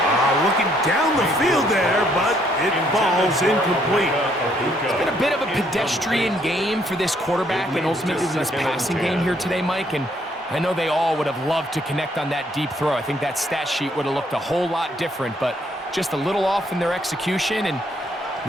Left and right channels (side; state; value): both; normal; correlation 0.68